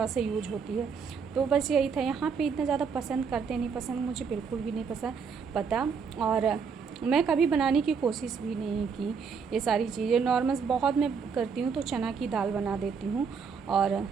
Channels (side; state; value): left; quieter; 6.0 dB